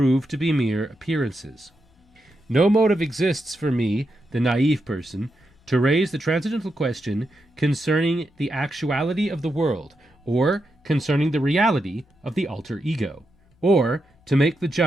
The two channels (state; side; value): normal; both; correlation 0.85